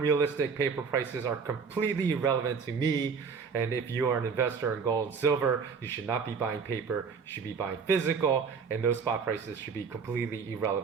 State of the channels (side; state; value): left; quieter; 5.7 dB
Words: paper prices are completely irrelevant to me. And if you are an investor in gold and silver, you should not be buying paper, you should be buying physical, and those spot prices should be completely